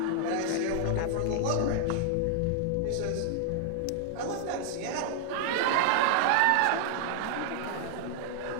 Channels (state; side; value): different; both; correlation 0.00